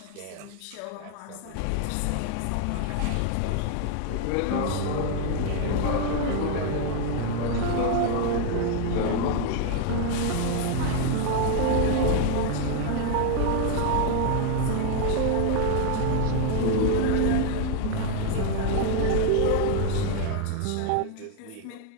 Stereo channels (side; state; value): both; different; correlation 0.00